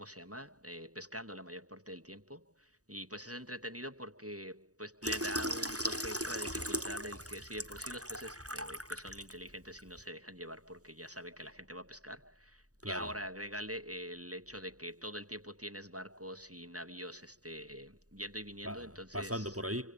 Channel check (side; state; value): left; late; 0.66 ms